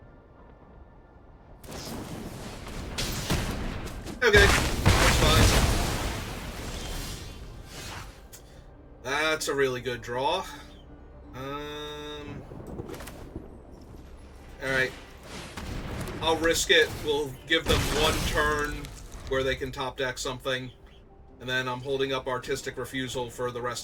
Okay, that's fine. That's a really good draw. Alright. I'll risk it. We'll give them 1 turn where they can top deck something. And then I'm holding up Artistic Refusal for the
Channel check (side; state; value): both; identical; correlation 1.00